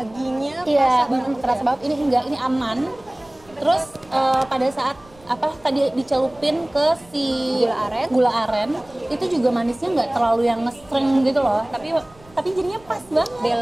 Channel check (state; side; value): noise; right; rumble, 26 dB below the sound